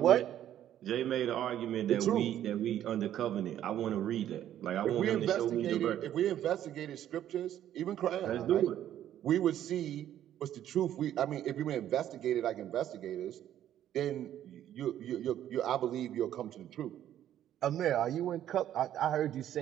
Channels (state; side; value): quieter; left; 11.4 dB